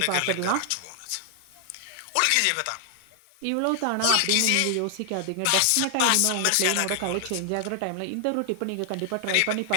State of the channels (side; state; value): both; different; correlation 0.00